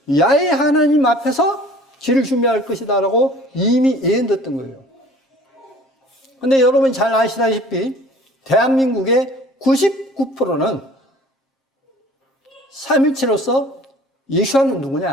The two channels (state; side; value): normal; both; correlation 0.49